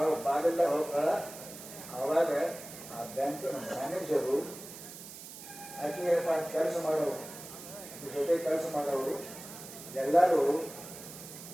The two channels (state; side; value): noise; right; hiss, 13 dB below the sound